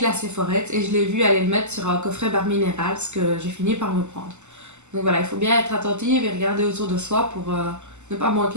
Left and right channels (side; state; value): left; late; 0.83 ms